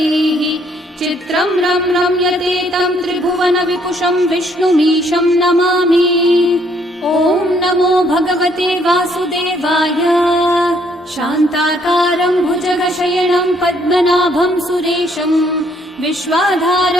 चित्रं रम्यते तं त्रिभुवन विपुषं विष्णुमीशं नमामि। ॐ नमो भगवते वासुदेवाय। शान्ताकारं भुजगशयनं पद्मनाभं सुरेशं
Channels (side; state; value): both; normal; correlation 0.67